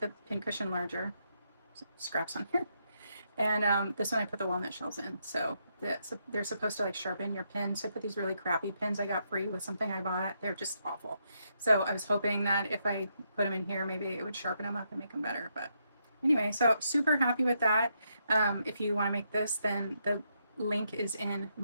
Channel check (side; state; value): both; inverted; correlation -0.79